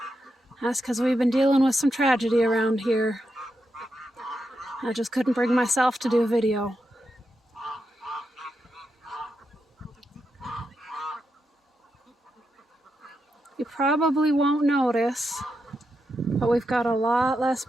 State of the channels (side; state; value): both; normal; correlation 0.85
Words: That's because we've been dealing with some tragedy around here. I just couldn't bring myself to do a video. You probably won't notice, but we've got a lot less